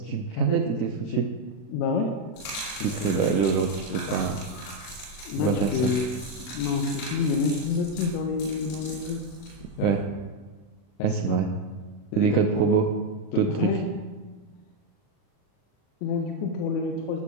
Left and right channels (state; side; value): late; right; 40 ms